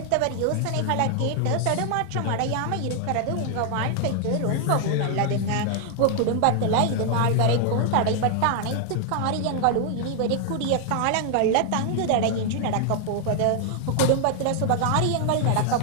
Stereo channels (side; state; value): both; different; correlation 0.00